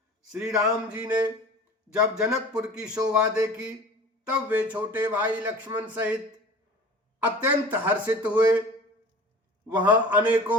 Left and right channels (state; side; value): normal; both; correlation 0.41